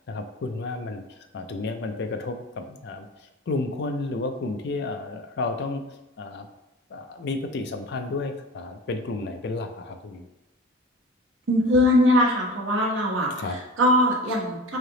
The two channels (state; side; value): normal; both; correlation 0.35